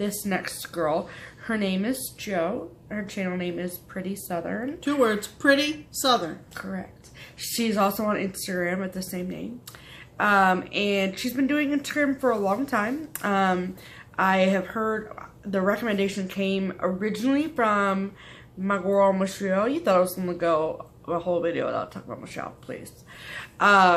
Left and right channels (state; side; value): identical; both; correlation 1.00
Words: next girl. Her name is Jo. Her channel name is Pretty Southern. 2 words, Pretty Southern. Correct. She's also on Instagram with the same name. And she's been doing Instagram for a long time. I have heard the recommendation came originally from my girl Michelle. You thought I was going to go a whole video without talking about Michelle, please.